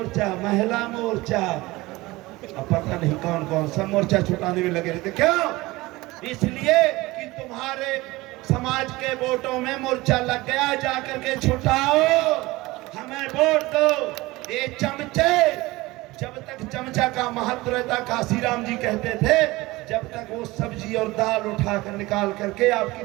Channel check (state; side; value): quieter; left; 20.4 dB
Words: महिला मोर्चा, अब पता नहीं कौन कौन सा मोर्चा छुटाने में लगे रहते। क्यों? इसलिए कि तुम्हारे समाज के वोटों में मोर्चा लग गया, जाकर के छुटाओ, हमें वोट दो। ये चमचे, जब तक चमचा का महत्व रहता, काशीराम जी कहते थे, जब तक वो सब्जी और दाल उठाकर निकाल करके